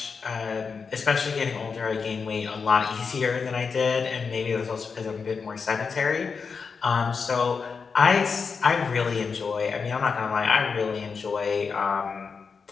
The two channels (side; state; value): right; quieter; 5.4 dB